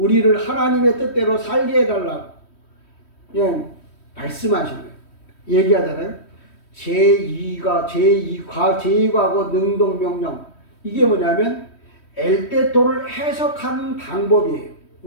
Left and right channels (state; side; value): late; right; 3.1 ms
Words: 하나님의 뜻대로 살게 해달라고 그냥 말씀하신 거예요. 얘기하잖아요. 제2과거 능동명령. 이게 뭐냐면 엘테토를 해석하는 방법이에요.